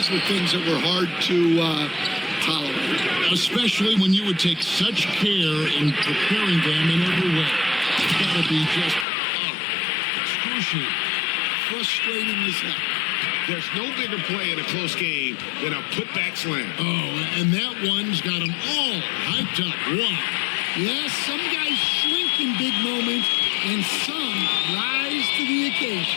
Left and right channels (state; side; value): drops out; right; at 9.1 s